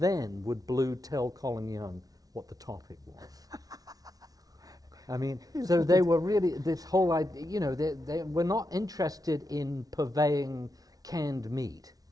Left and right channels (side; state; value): left; late; 0.18 ms